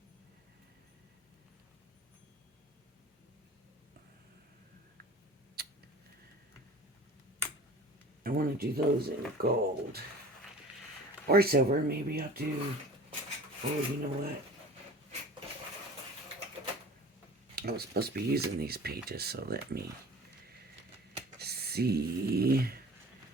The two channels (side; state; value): both; normal; correlation 0.42